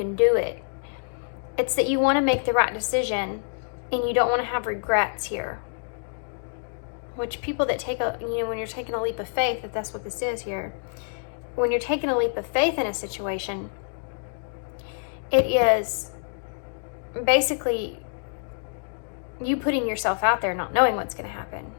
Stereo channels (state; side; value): silent; right; digital silence